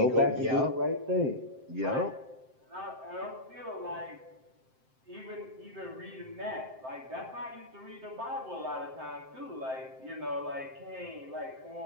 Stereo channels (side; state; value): left; late; 7.7 ms